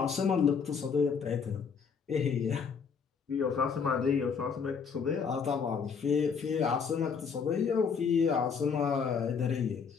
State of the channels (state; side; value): quieter; right; 6.1 dB